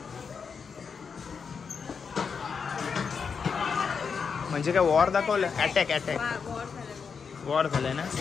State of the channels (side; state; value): right; quieter; 5.9 dB